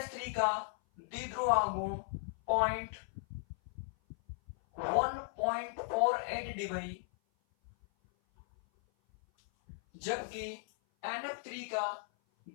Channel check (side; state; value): right; silent; 53 dB below the other